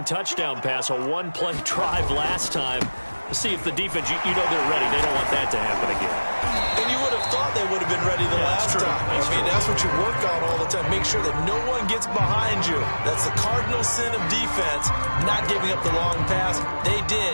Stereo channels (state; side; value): inverted; both; correlation -1.00